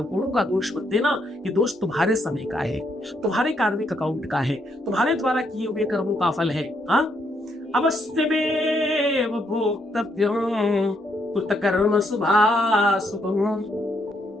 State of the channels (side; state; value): both; normal; correlation 0.75